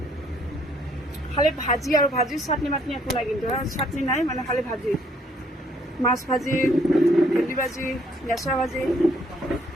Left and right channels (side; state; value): both; normal; correlation 0.65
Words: খালি ভাজি আৰু ভাজি, চাটনি মাটনি একো নাই, কিন্তু চাটনি নাই মানে খালি ভাজি, মাছ ভাজি, ভেন্দি ভাজি, নেচা ভাজি।